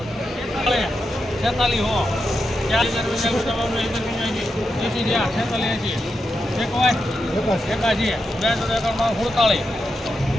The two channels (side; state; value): both; normal; correlation 0.86